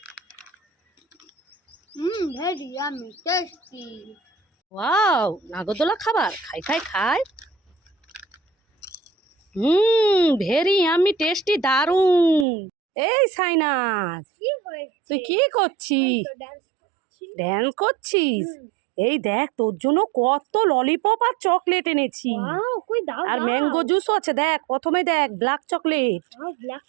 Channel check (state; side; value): drops out; left; at 12.5 s